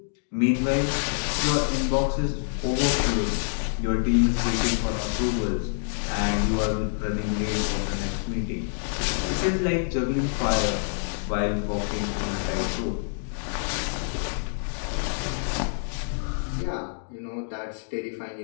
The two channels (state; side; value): silent; right; digital silence